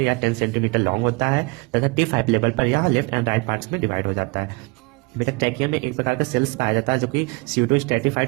हैं। या 10 सेंटीमीटर लॉन्ग होता है तथा T5 लेवल पर यह लेफ्ट एंड राइट पार्ट्स में डिवाइड हो जाता है। बेटा ट्रैकिया में एक प्रकार का सेल्स पाया जाता है जो कि pseudo stratified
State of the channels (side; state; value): left; quieter; 28.3 dB